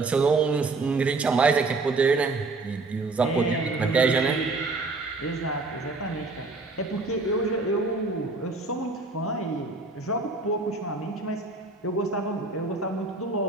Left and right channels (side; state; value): left; quieter; 3.5 dB